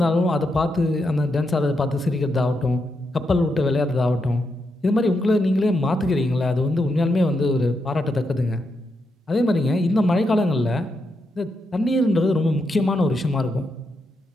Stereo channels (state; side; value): normal; both; correlation 0.83